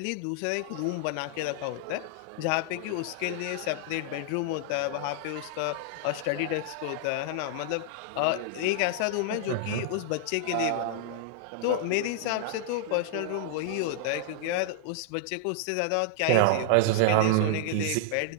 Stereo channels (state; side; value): different; both; correlation -0.01